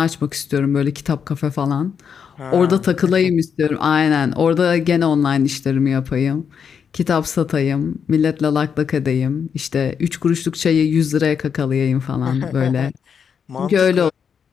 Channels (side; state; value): right; quieter; 7.0 dB